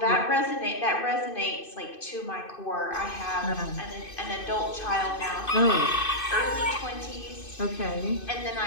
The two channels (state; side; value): late; right; 2.5 ms